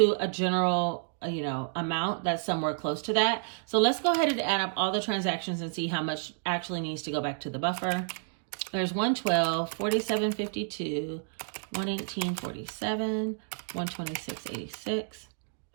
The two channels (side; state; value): left; silent; digital silence